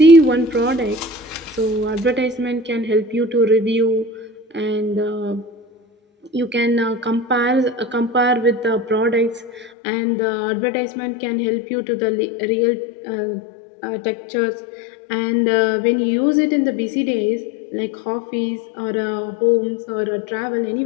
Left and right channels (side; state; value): right; drops out; at 9.7 s